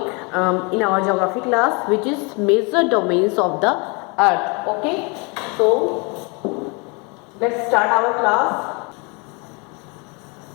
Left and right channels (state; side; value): quieter; right; 30.8 dB